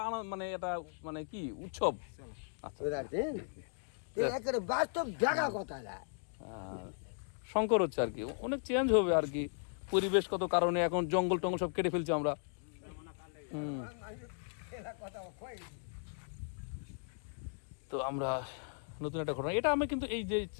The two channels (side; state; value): right; silent; digital silence